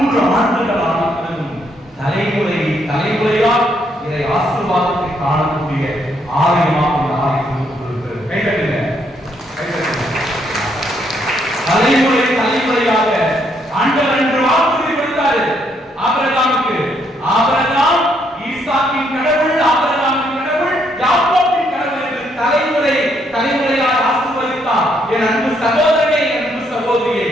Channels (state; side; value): normal; both; correlation 0.73